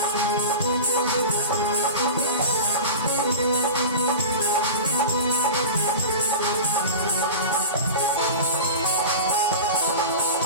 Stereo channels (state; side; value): inverted; both; correlation -0.31